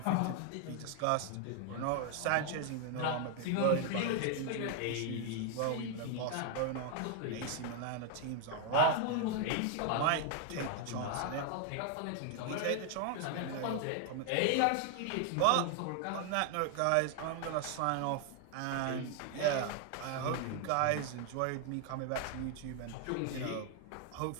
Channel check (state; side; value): different; both; correlation 0.00